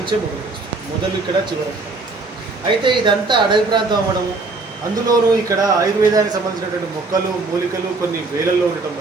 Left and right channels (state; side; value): quieter; left; 3.6 dB